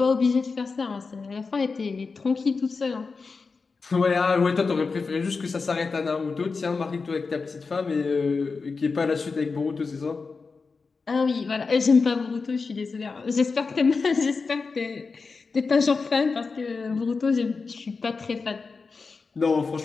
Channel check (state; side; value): quieter; right; 4.5 dB